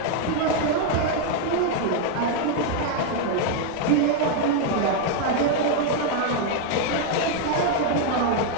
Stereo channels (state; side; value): different; both; correlation 0.00